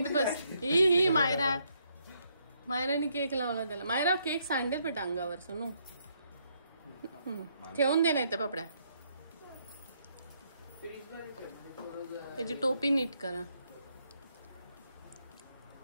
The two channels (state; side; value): inverted; both; correlation -0.73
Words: बस. ही मायराने केक लावला त्याला. मायरा केक सांडेल बेटा अंगावर. सोनू ठेवून दे, नाही तर पापड्या. त्याची टोपी नीट करा.